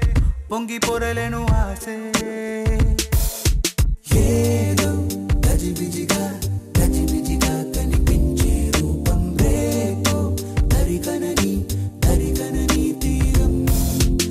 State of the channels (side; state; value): both; identical; correlation 1.00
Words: పొంగి పొరలేను ఆసే ఏదో గజిబిజిగా గజిబిజిగా కనిపించే రూపం రేపో తరిగనని తరిగనని తీరం